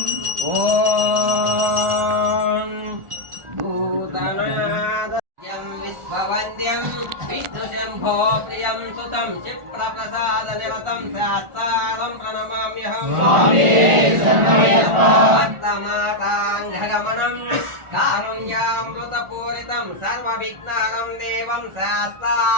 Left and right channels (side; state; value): left; late; 1.4 ms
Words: ఓం భూతనాద విశ్వవంద్యం విష్ణు శంభో ప్రియం సుతం క్షిప్రప్రసాద నిరతం శాస్త్రం ప్రణమామ్యహం భక్తమాతాంఘగమనం కారుణ్యామృతపూరితం సర్వవిఘ్నహరం దేవం